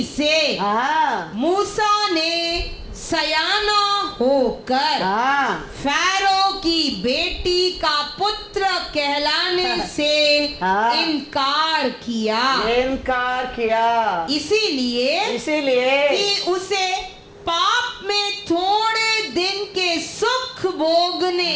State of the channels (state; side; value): identical; both; correlation 1.00